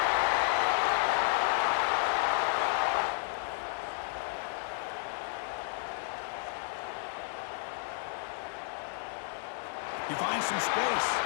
He finds some space.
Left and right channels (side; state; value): right; silent; 56 dB below the other